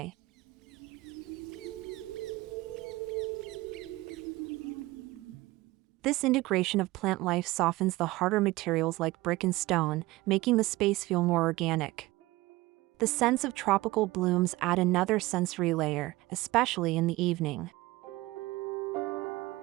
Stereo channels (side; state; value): left; quieter; 19.4 dB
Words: This integration of plant life softens the harder materials like brick and stone, making the space feel more organic. The scents of tropical blooms add another sensory layer, especially in the evening.